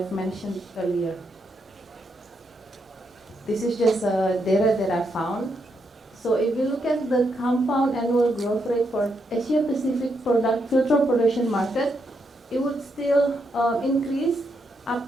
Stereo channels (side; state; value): both; normal; correlation 0.80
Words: mentioned earlier. This is just data that I found. So if you look at the compound annual growth rate for Asia Pacific filter production market, it would still increase